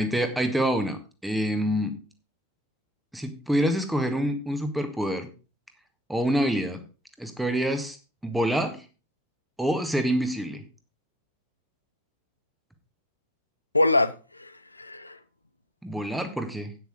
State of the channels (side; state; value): both; normal; correlation 0.44